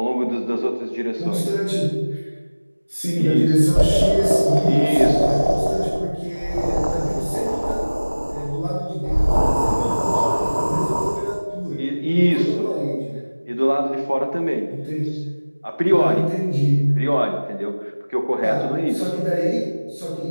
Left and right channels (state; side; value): inverted; both; correlation -1.00